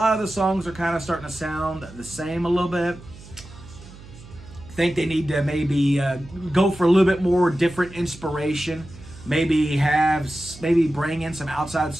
of the songs are kind of starting to sound the same a little bit. I think they need to maybe go for a little bit more different inspiration. Maybe bring in some outside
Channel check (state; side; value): noise; right; hum, 18 dB below the sound